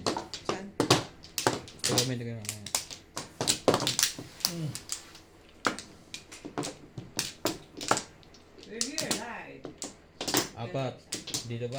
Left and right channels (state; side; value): identical; both; correlation 1.00